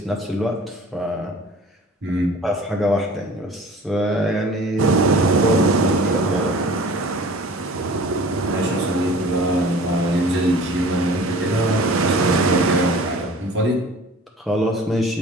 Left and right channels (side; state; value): both; normal; correlation 0.45